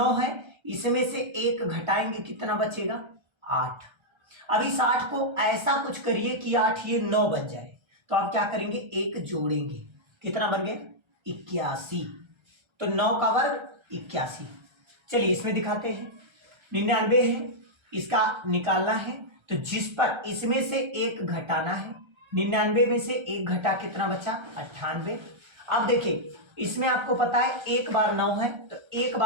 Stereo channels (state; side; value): late; left; 1.3 ms